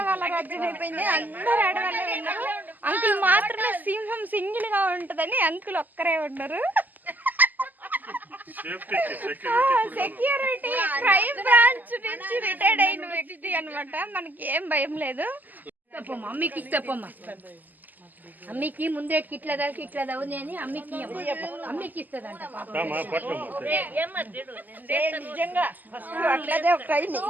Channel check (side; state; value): left; late; 0.084 ms